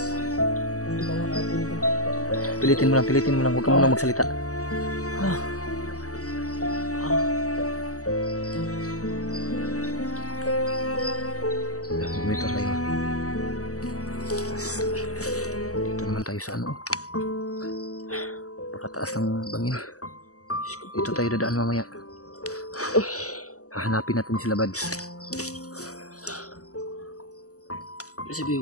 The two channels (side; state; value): right; late; 0.66 ms